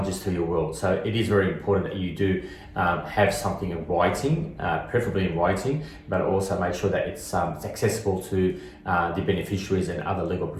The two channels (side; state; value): both; identical; correlation 1.00